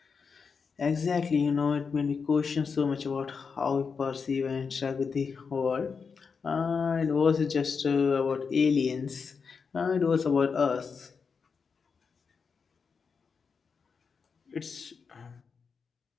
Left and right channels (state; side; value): quieter; right; 5.5 dB